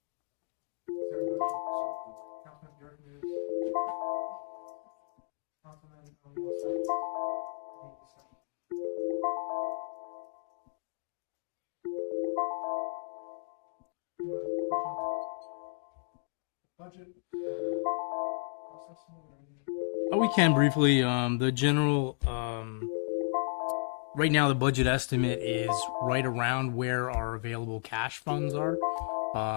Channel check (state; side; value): silent; right; digital silence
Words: Is there a motion? So moved. Councilman Burek moves. Is there a second? A second. Councilman O'Neill seconds. Any discussion? Do you want to touch on the budget and cost estimate or any? We can briefly, the general, right now the budget estimate is right around where our available cash funds are,